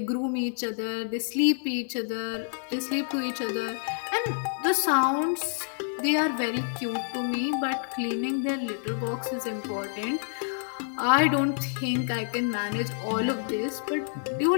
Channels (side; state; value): right; silent; digital silence